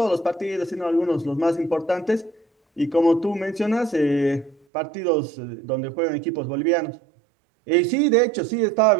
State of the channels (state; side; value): drops out; left; at 4.5 s